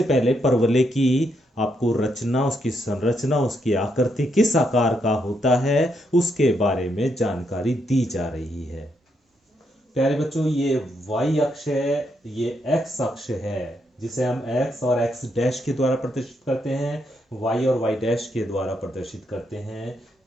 पहले परवलय की आपको रचना, उसकी संरचना, उसकी आकृति किस आकार का होता है उसके बारे में जानकारी दी जा रही है। प्यारे बच्चों, ये y अक्ष है, ये x अक्ष है, जिसे हम x और x डैश के द्वारा प्रदर्शित करते हैं, y और y डैश के द्वारा प्रदर्शित करते हैं।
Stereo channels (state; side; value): normal; both; correlation 0.78